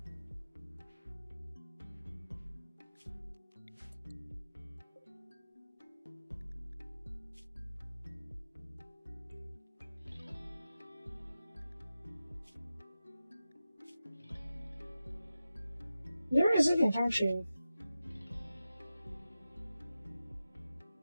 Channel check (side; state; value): both; inverted; correlation -0.93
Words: You're resilient, aren't you?